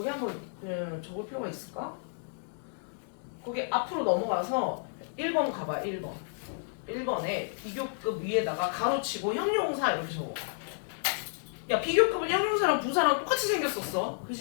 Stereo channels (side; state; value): right; silent; digital silence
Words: 한번 그냥 적을 필요가 있을까? 거기 앞으로 넘어가서 1번 가봐. 1번. 1번에 비교급 위에다가 가로치고 형용사 이렇게 적어. 야 비교급은 형용사랑 부사랑 똑같이 생겼었어.